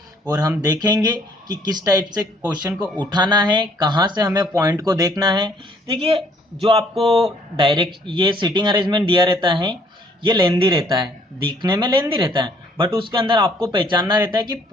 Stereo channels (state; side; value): normal; both; correlation 0.63